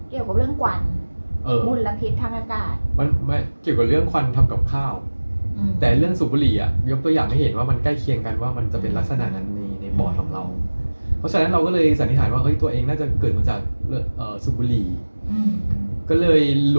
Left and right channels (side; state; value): both; inverted; correlation -1.00